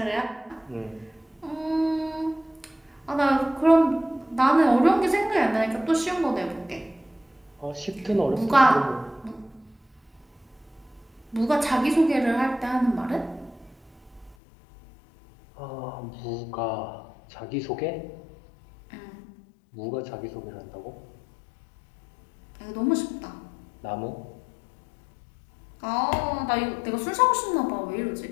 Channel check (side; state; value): right; drops out; at 14.4 s